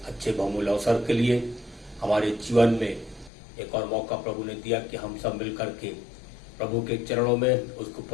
अच्छे बहुमूल्य अवसर के लिए। हमारे जीवन में एक और मौका प्रभु ने दिया कि हम सब मिल करके प्रभु के चरणों में उसकी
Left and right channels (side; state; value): right; drops out; at 3.3 s